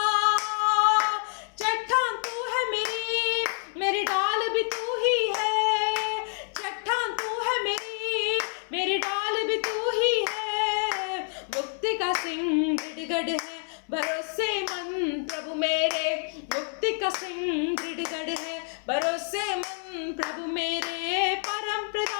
चट्टान तू है मेरी डाल भी तू ही है। चट्टान तू है मेरी डाल भी तू ही है। मुक्ति का सिंह दृढ़गढ़ है, भरोसेमंद प्रभु मेरे। मुक्ति का सिंह दृढ़गढ़ है, भरोसेमंद प्रभु मेरे। परम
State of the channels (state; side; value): silent; right; 60 dB below the other